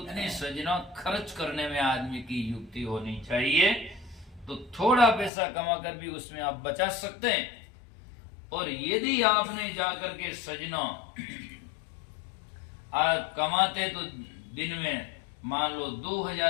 सजना खर्च करने में आदमी की युक्ति होनी चाहिए। तो थोड़ा पैसा कमाकर भी उसमें आप बचा सकते हैं। और यदि आपने जाकर के सजना आप कमाते तो दिन में मान लो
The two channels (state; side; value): drops out; right; at 5.3 s